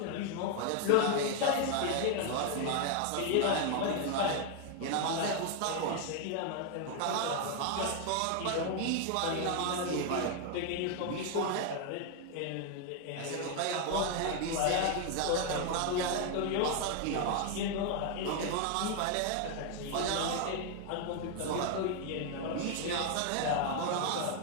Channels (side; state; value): both; different; correlation 0.01